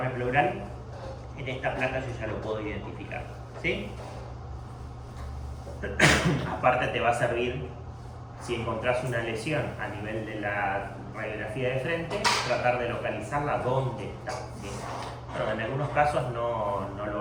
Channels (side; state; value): both; identical; correlation 1.00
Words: pleural, en esta placa yo ya lo puedo identificar, ¿sí? Aparte te va a servir, si encontrás una lesión a nivel de la radiografía de frente, tratar de localizarla dónde está, ¿sí? Bueno, en algunos casos no lo